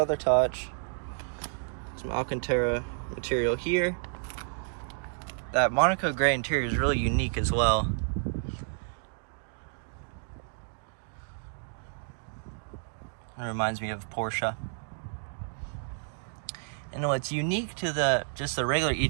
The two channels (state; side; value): silent; left; 56 dB below the other